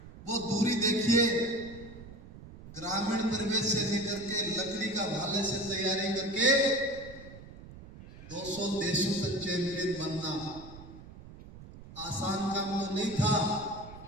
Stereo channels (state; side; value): noise; right; rumble, 16 dB below the sound